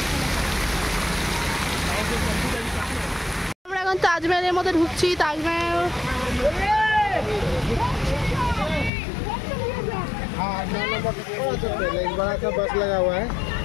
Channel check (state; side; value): drops out; right; at 8.9 s